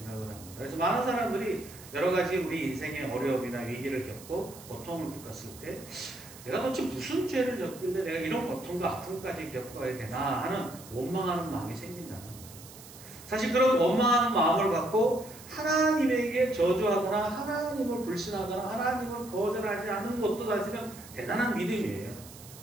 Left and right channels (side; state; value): right; noise; hiss, 18 dB below the sound